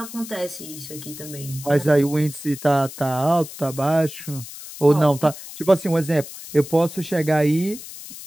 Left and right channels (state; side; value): noise; left; hiss, 13 dB below the sound